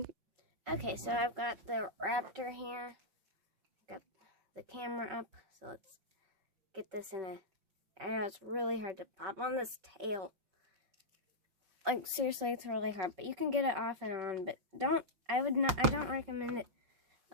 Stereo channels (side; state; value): left; late; 5.8 ms